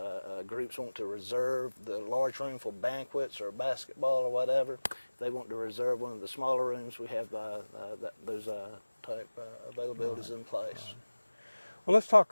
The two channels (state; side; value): inverted; both; correlation -1.00